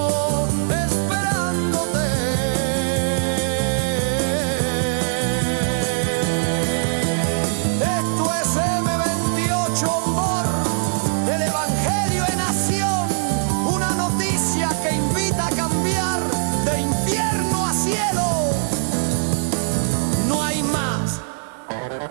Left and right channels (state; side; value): silent; left; digital silence